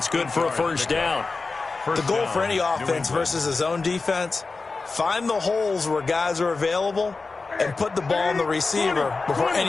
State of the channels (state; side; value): quieter; right; 4.0 dB